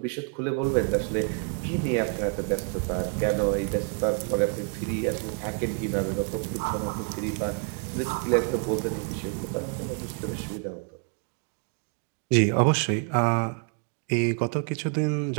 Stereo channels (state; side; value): quieter; left; 38.2 dB